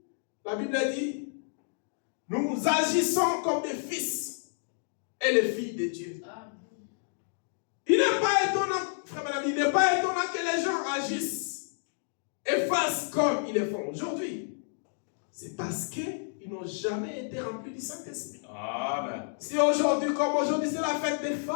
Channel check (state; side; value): silent; right; digital silence